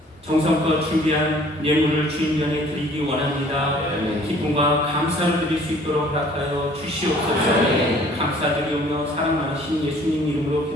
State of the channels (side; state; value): both; normal; correlation 0.54